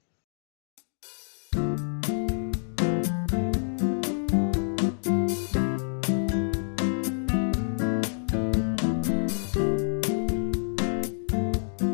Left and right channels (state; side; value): silent; right; 60 dB below the other